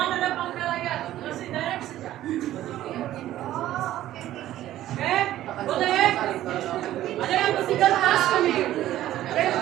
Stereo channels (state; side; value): quieter; left; 13.6 dB